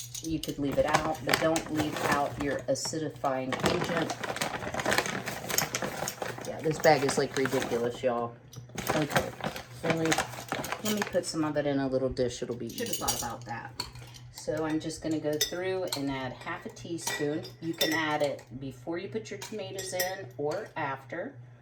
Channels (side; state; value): both; identical; correlation 1.00